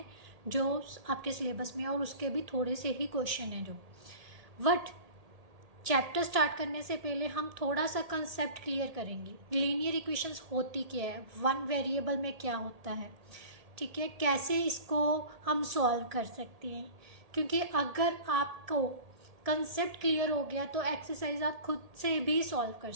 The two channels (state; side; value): late; left; 1.8 ms